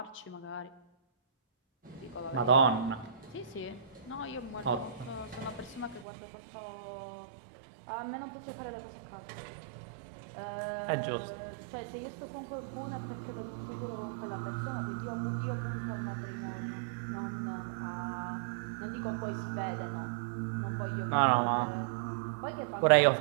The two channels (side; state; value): left; drops out; at 6.1 s